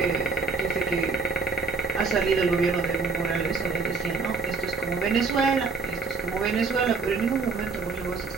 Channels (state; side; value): quieter; left; 4.3 dB